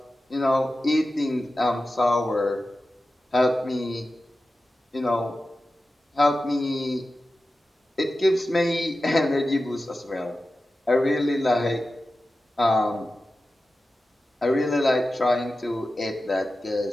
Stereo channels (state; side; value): normal; both; correlation 0.93